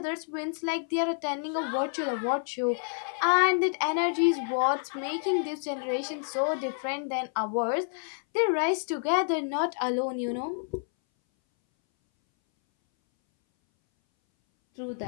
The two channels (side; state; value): right; silent; 59 dB below the other